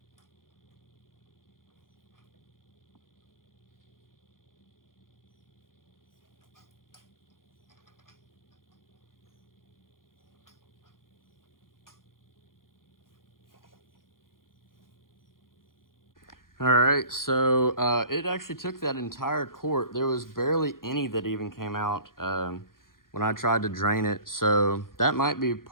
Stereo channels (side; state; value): right; late; 0.91 ms